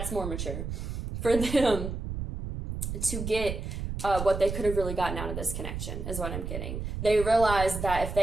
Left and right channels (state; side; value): noise; right; rumble, 5 dB below the sound